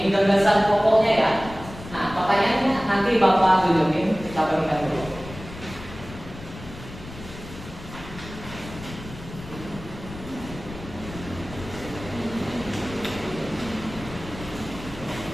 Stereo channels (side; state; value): left; noise; rumble, 14 dB below the sound